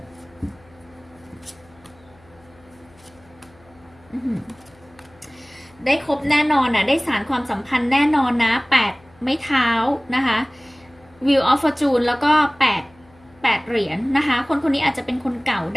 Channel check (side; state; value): left; noise; hum, 29 dB below the sound